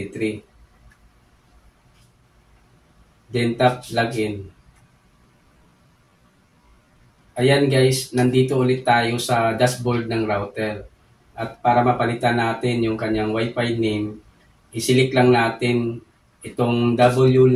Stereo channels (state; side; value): identical; both; correlation 1.00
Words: Then tap login. Ayan guys, nandito ulit tayo sa dashboard ng router. At para mapalitan natin yung kanyang Wi-Fi name, isilik lang natin itong